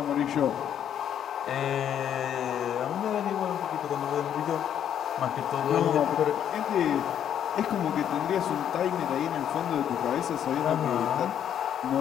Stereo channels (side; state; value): right; quieter; 9.6 dB